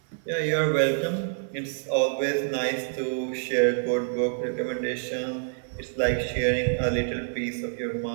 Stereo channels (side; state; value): left; silent; 60 dB below the other